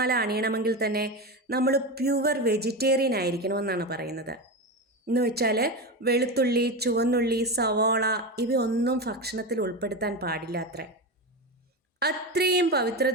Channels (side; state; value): both; normal; correlation 0.19